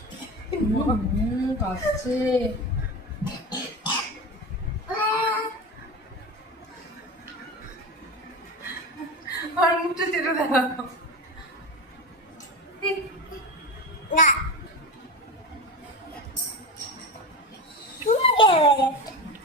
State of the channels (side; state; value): both; normal; correlation 0.24